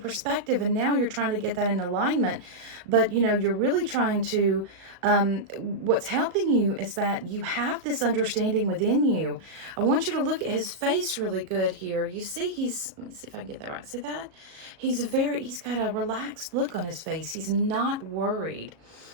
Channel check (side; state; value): left; late; 37 ms